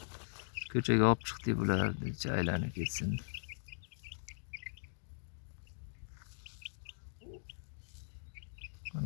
Ko'chaga olib chiqdik bularni, aylanib ketsin.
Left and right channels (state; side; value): silent; right; digital silence